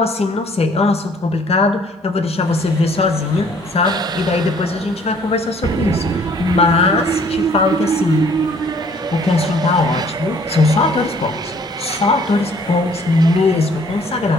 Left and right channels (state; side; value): normal; both; correlation 0.59